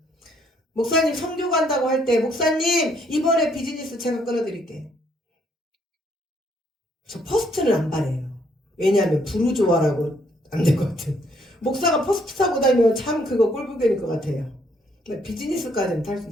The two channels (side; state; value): both; normal; correlation 0.69